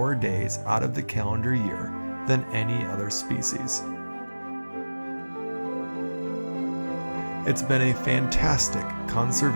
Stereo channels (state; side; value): inverted; both; correlation -1.00